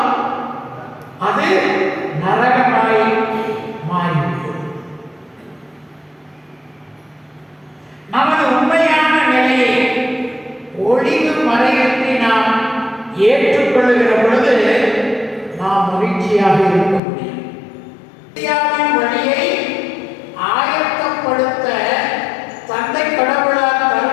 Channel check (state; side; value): drops out; right; at 17.0 s